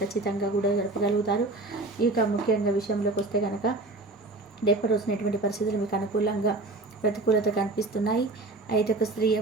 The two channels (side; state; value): left; quieter; 3.0 dB